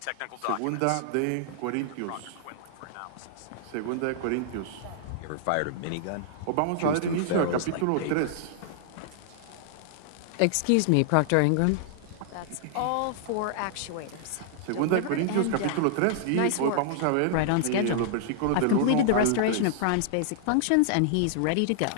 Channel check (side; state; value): both; different; correlation -0.01